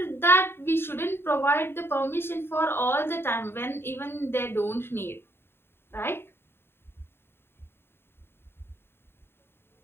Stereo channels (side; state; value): right; late; 0.11 ms